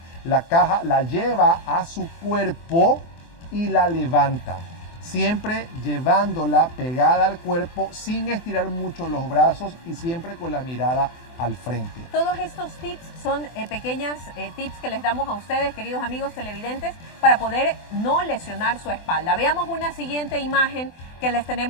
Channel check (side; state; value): right; late; 24 ms